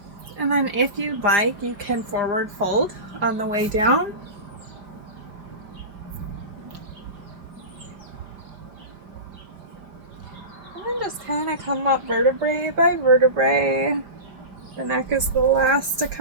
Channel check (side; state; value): left; late; 5.0 ms